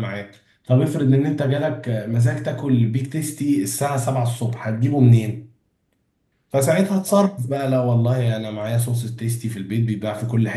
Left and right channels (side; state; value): both; identical; correlation 1.00